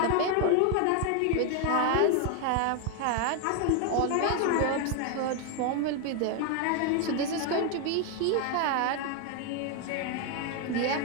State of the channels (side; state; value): both; different; correlation 0.01